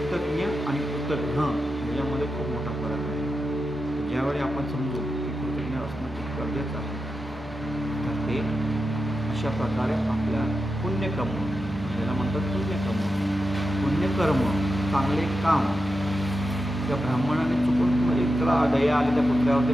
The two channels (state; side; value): normal; both; correlation 0.89